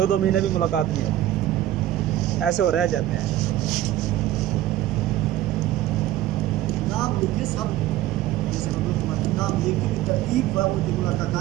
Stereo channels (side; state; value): left; quieter; 13.9 dB